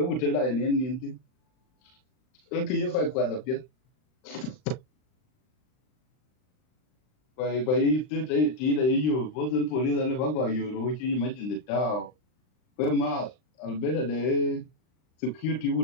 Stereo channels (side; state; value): right; late; 39 ms